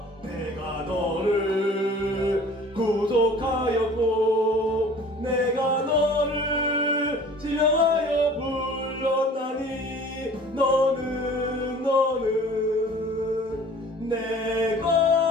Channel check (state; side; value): normal; both; correlation 0.47